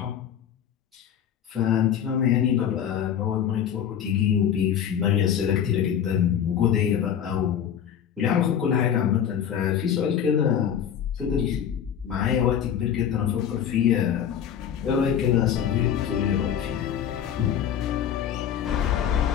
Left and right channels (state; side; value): quieter; right; 9.0 dB